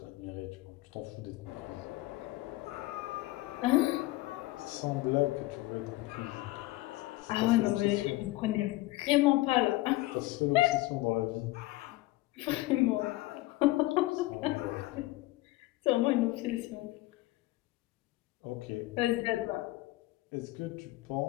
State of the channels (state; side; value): quieter; right; 18.9 dB